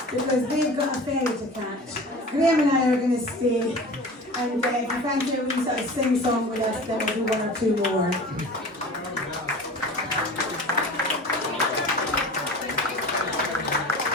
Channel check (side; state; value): both; normal; correlation 0.37